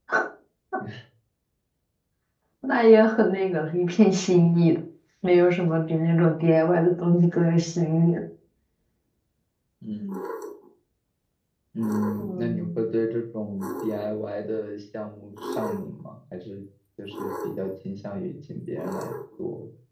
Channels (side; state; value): both; identical; correlation 1.00